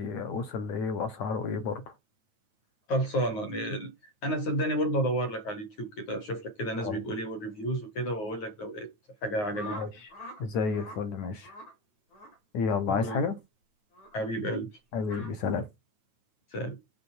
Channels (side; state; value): right; late; 9.2 ms